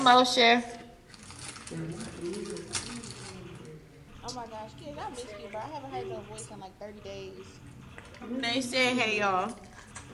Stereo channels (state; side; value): identical; both; correlation 1.00